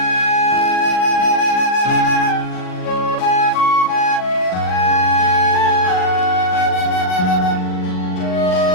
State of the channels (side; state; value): right; late; 39 ms